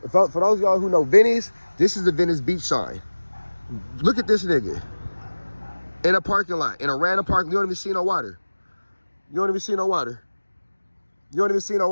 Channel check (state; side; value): inverted; both; correlation -1.00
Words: For those of y'all who know Venice, this is the Venice Beach sign. Look at this nigga. In a parking lot, in a random parking. You don't even see no water. You won't even see no water.